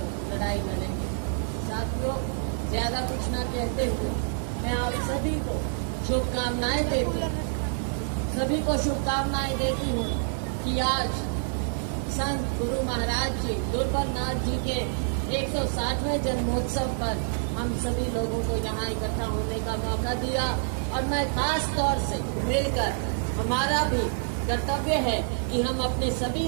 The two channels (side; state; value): left; silent; 60 dB below the other